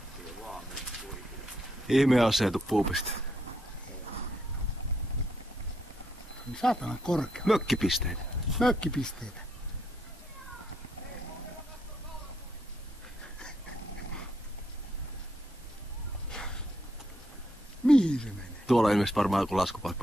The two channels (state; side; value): normal; both; correlation 0.77